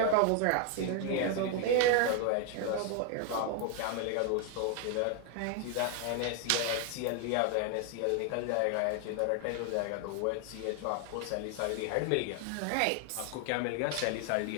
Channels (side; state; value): both; different; correlation 0.01